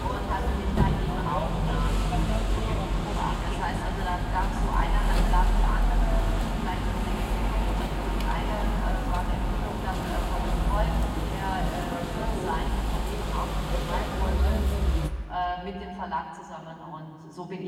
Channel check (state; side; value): identical; both; correlation 1.00